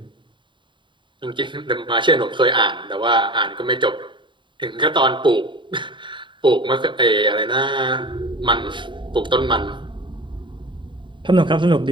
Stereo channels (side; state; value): left; late; 0.23 ms